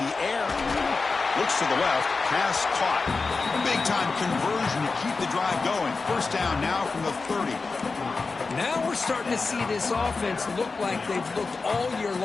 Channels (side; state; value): right; quieter; 4.2 dB